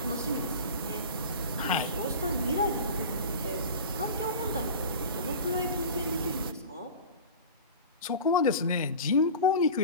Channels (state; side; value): inverted; both; correlation -0.33